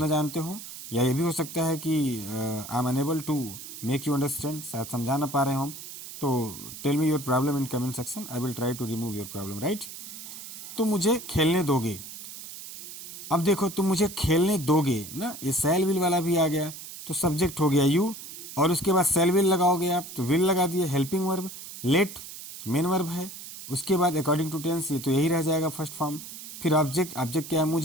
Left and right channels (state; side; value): noise; right; hiss, 12 dB below the sound